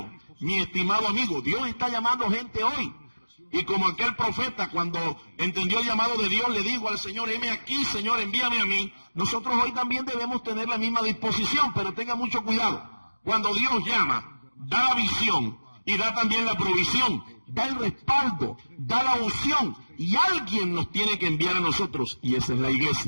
mi estimado amigo, Dios está llamando gente hoy. Y como aquel profeta, cuando entendió el llamado de Dios, le dijo al Señor: heme aquí, Señor, envíame a mí. Nosotros hoy también debemos tener la misma disposición, pero tenga mucho cuidado. Cuando Dios llama, da la visión y da también la provisión, da el respaldo, da la unción, y alguien nos tiene que enviar a nosotros, y esa es la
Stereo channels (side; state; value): both; inverted; correlation -1.00